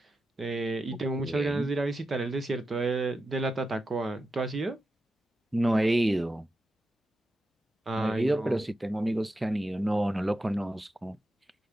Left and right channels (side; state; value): both; normal; correlation 0.90